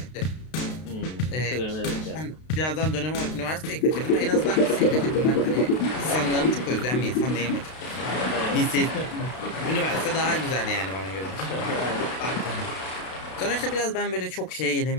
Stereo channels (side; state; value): right; late; 32 ms